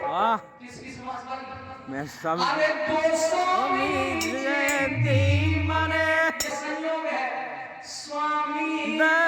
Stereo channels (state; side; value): identical; both; correlation 1.00